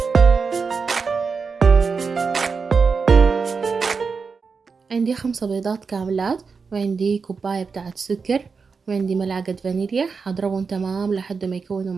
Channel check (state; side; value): quieter; left; 5.1 dB